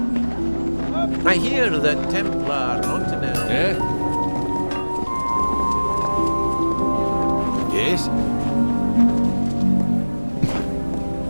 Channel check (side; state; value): both; inverted; correlation -1.00